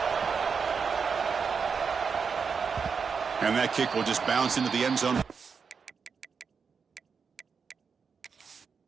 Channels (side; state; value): left; quieter; 5.8 dB